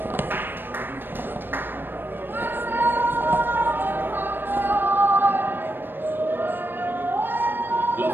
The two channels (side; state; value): left; late; 0.096 ms